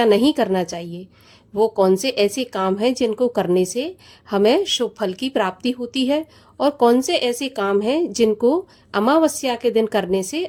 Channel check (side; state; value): both; identical; correlation 1.00